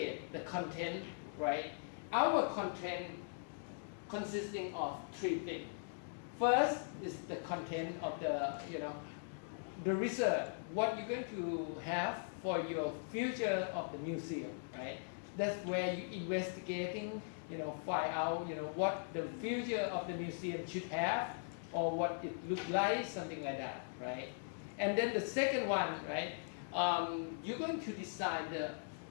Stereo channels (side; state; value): right; silent; digital silence